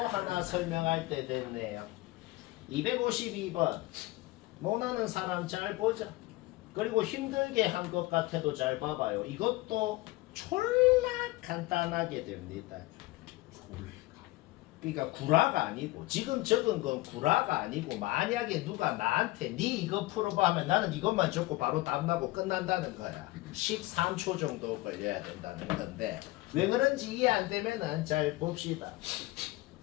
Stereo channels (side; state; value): right; quieter; 20.0 dB